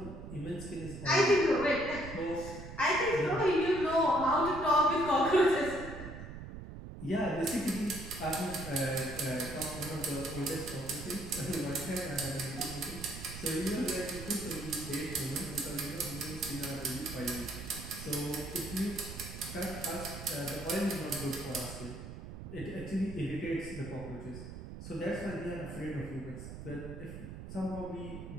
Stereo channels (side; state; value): right; noise; rumble, 10 dB below the sound